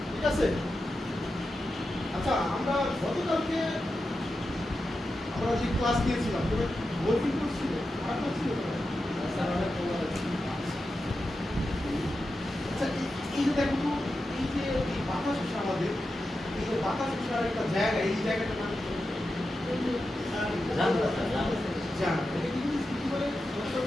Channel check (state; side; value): normal; both; correlation 0.90